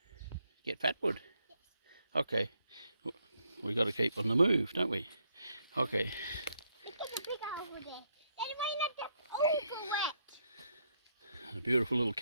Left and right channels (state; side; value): inverted; both; correlation -0.75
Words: get fatwood? Yes. Okay. We got to keep on the move, don't we? Okay. Look at the big over there. That might not just over wet. A beautiful little